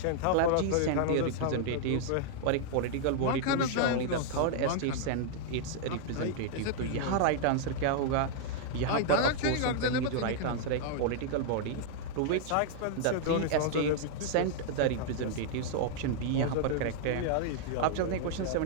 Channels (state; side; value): different; both; correlation -0.01